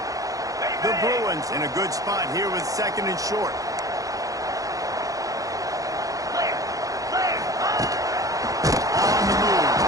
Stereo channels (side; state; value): left; late; 0.17 ms